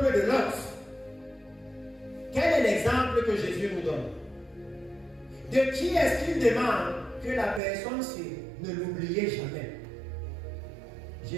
de Lot. Quel est l'exemple que Jésus nous donne? De qui est-ce qu'il demande que la personne-ci ne l'oubliez jamais?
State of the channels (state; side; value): drops out; left; at 7.6 s